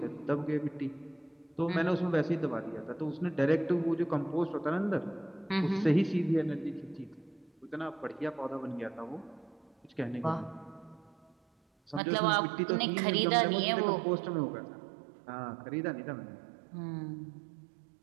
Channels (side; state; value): left; drops out; at 12.0 s